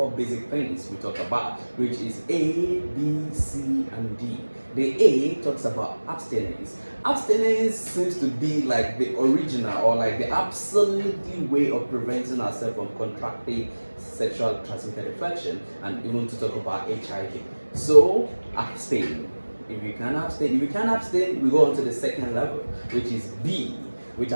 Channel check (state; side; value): inverted; both; correlation -1.00